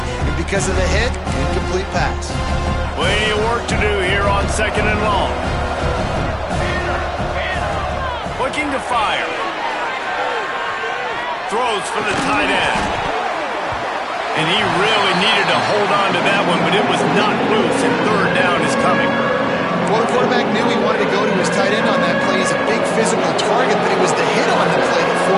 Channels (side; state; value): both; identical; correlation 1.00